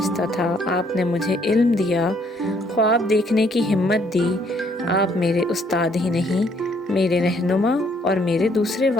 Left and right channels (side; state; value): both; normal; correlation 0.66